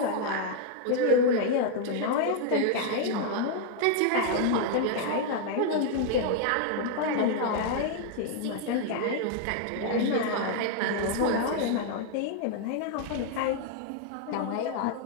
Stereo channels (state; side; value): different; both; correlation 0.00